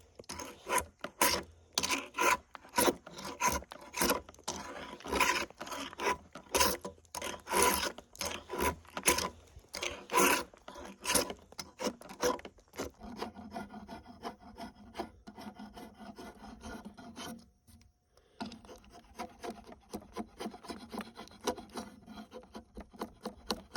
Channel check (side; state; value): both; identical; correlation 1.00